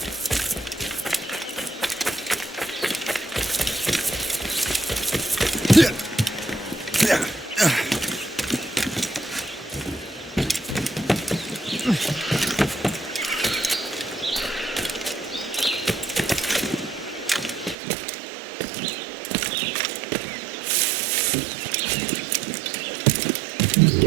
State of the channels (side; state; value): left; drops out; at 17.8 s